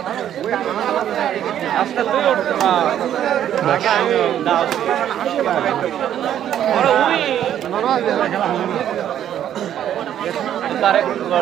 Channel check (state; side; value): quieter; left; 10.6 dB